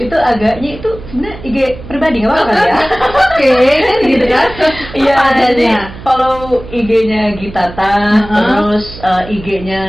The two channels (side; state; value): right; noise; hum, 15 dB below the sound